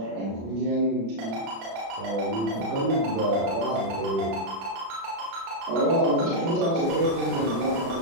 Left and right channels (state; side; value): late; left; 36 ms